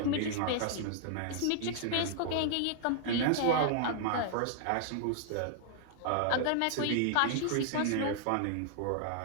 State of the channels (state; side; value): different; both; correlation 0.00